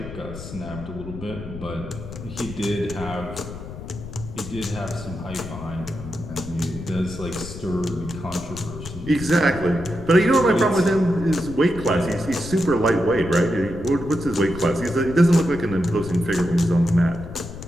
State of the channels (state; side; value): noise; left; rumble, 11 dB below the sound